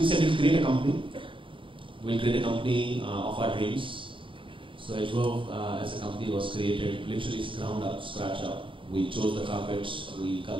said we'll create a company. We'll create a company of our dreams. So Edgewove as a company was created literally ground up, scratch up. We chose the carpets, we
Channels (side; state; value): left; late; 0.25 ms